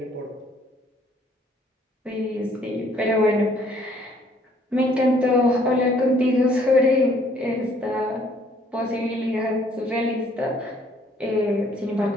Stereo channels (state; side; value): normal; both; correlation 0.62